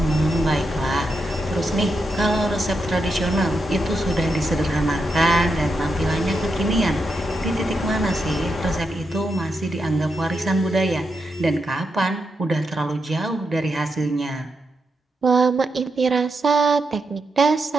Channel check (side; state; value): both; normal; correlation 0.84